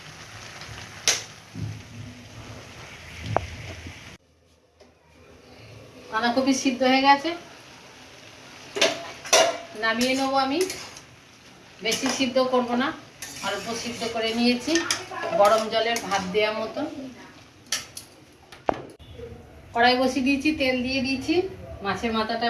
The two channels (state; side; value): identical; both; correlation 1.00